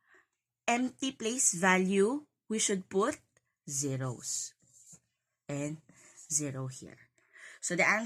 empty place value, we should put zeros. And 0 here. So the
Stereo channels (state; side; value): identical; both; correlation 1.00